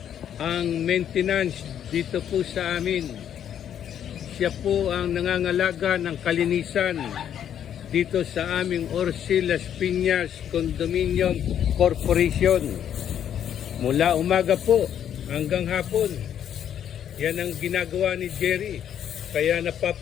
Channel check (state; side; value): quieter; right; 9.6 dB